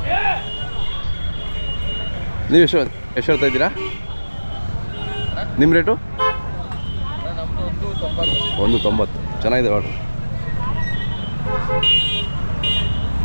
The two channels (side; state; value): both; inverted; correlation -1.00